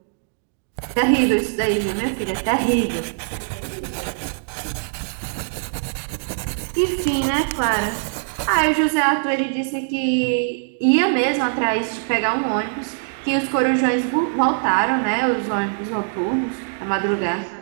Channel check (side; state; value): left; silent; digital silence